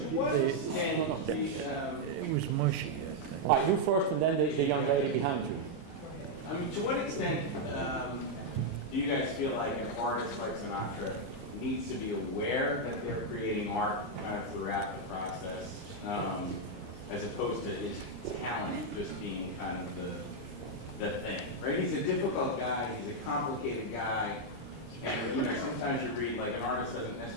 was mushy, I think. All right, you first, and then the young lady behind you. I mean, to what extent do you guys feel like an artist like Sinatra needs to be aware that they're creating art kind of throughout the process, as opposed to his talent just being kind of the thing, right? He's a difficult guy, he's a complicated guy, and sometimes you read like an artist doesn't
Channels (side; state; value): both; normal; correlation -0.01